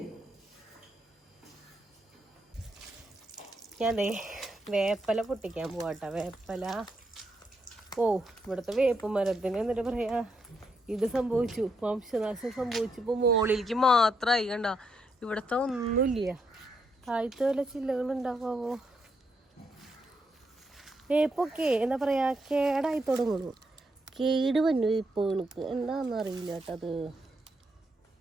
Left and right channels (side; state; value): both; normal; correlation 0.79